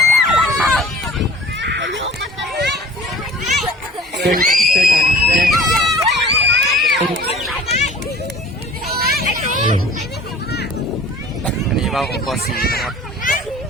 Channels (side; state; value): both; normal; correlation 0.45